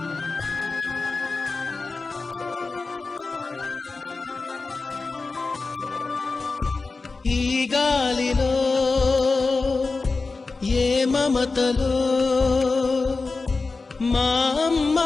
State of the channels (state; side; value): quieter; right; 3.9 dB